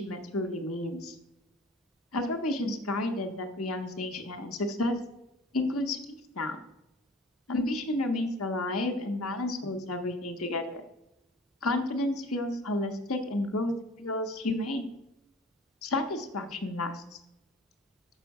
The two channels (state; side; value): normal; both; correlation 0.45